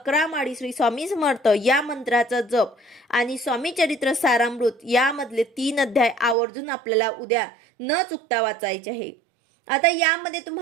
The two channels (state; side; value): drops out; left; at 6.4 s